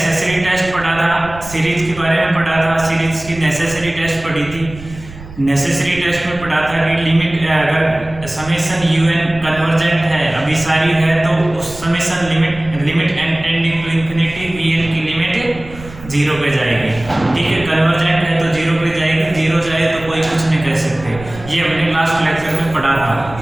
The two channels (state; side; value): noise; right; rumble, 16 dB below the sound